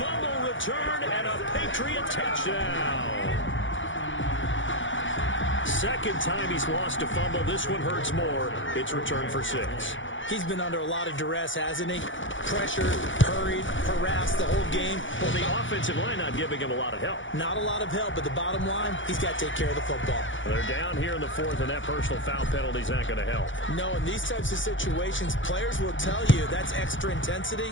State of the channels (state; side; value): late; right; 0.56 ms